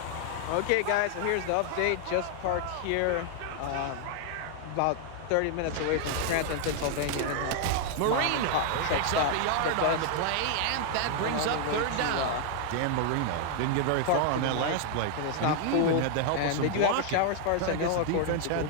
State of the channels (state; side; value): different; both; correlation 0.00